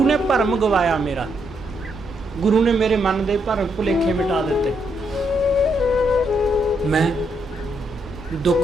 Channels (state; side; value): normal; both; correlation 0.77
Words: ਨੇ ਭਰਮ ਗਵਾਇਆ ਮੇਰਾ। ਗੁਰੂ ਨੇ ਮੇਰੇ ਮਨ ਦੇ ਭਰਮ ਭੁਲੇਖੇ ਮਿਟਾ ਦਿੱਤੇ। ਮੈਂ